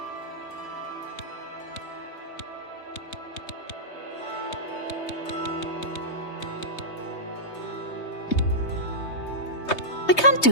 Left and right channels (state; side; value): late; right; 3.2 ms